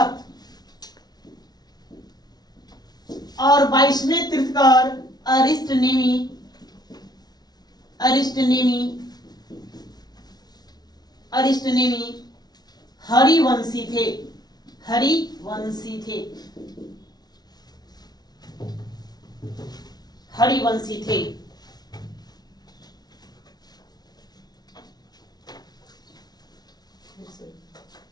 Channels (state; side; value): late; right; 0.19 ms